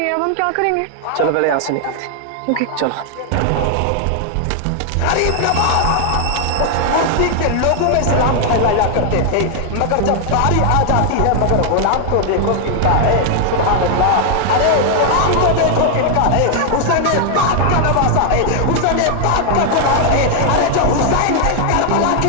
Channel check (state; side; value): different; both; correlation 0.00